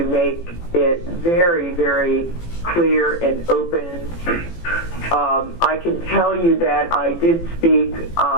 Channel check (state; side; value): late; right; 18 ms